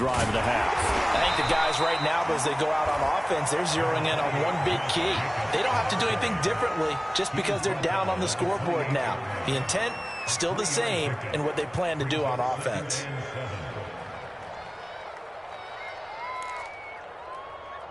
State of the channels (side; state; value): both; identical; correlation 1.00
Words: of the half. I think the guys right now, as they go out on offense, they're zeroing in on one big key. They don't have to do anything differently just because they're down on the scoreboard now. The intent, still the same in what they plan to do on offense.